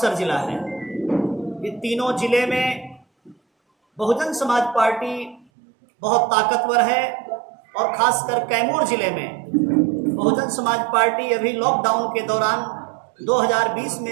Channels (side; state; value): left; drops out; at 5.5 s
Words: जिला है। ये तीनों जिले में बहुजन समाज पार्टी बहुत ताकतवर है और खासकर कैमूर जिले में बहुजन समाज पार्टी अभी लॉकडाउन के दौरान 2020